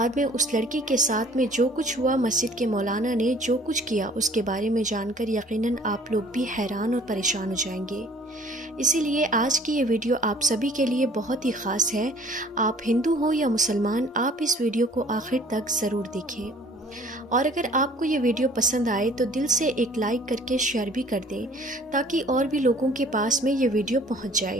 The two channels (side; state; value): both; normal; correlation 0.53